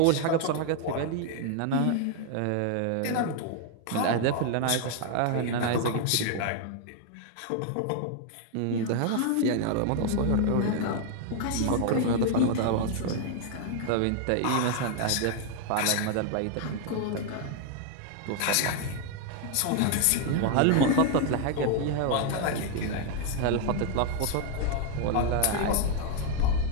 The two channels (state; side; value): different; both; correlation 0.00